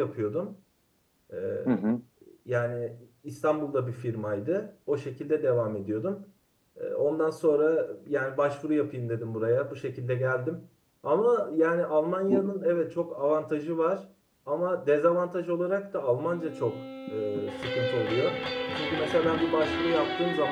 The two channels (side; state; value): both; identical; correlation 1.00